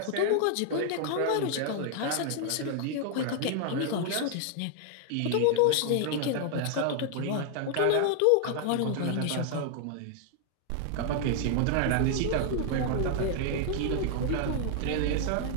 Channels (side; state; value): both; different; correlation 0.00